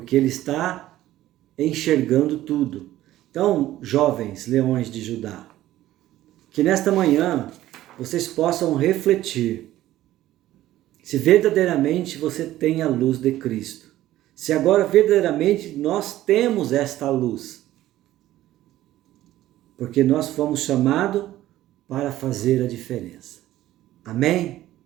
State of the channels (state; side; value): quieter; left; 14.5 dB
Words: ele está enxergando tudo. Então, jovens leões de Judá, que nesta manhã vocês possam refletir se verdadeiramente você tem a luz de Cristo. Se agora verdadeiramente nós temos esta luz. Porque nós fomos chamados para fazer a diferença. Amém?